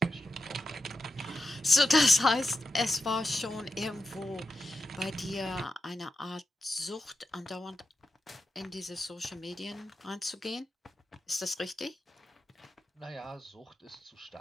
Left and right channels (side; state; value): both; normal; correlation 0.88